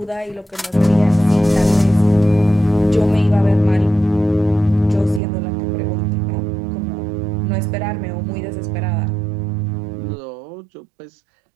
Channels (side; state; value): left; drops out; at 5.2 s